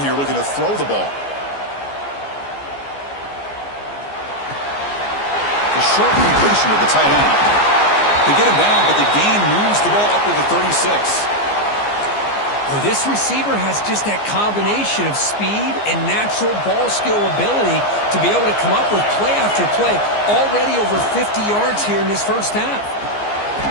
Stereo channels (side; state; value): right; late; 14 ms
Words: here, looking to throw the ball. The short completion of the tight end. They get him down, but the gain moves the ball up to the 36. Well, this receiver has just that combination of speed and natural ball skill ability to be able to come up with play after play. Already over 50 yards here in this first half.